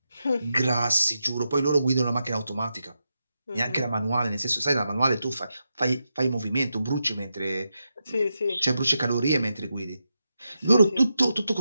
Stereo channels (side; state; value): both; inverted; correlation -0.87